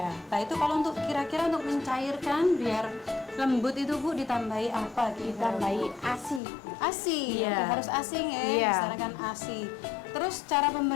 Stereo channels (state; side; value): drops out; right; at 6.4 s